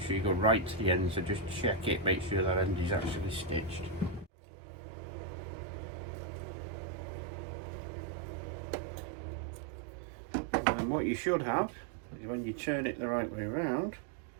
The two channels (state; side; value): drops out; left; at 4.3 s